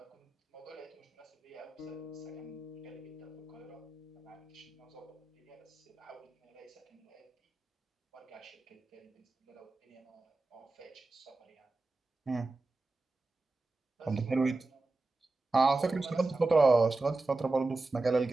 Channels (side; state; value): left; quieter; 3.3 dB